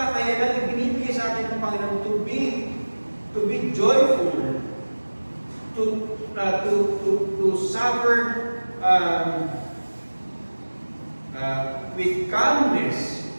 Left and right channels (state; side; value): inverted; both; correlation -1.00